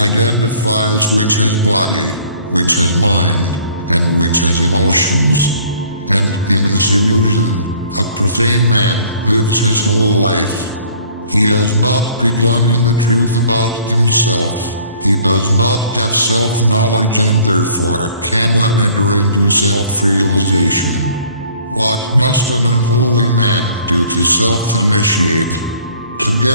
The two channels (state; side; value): inverted; both; correlation -0.55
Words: with his body, with his mind, and with his emotions. And in this illusion, a profane man lives his whole life. He has not begun in the truth about himself. He does not have self-knowledge and therefore cannot enter into self-realization. What must an unholy man do to self-initiate? To